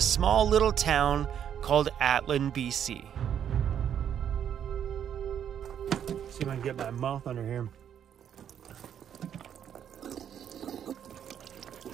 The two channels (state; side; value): quieter; left; 9.1 dB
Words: little town called Atlin, BC. See if I can get my mouth under here.